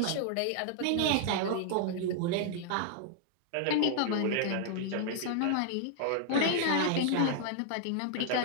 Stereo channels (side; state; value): both; different; correlation -0.01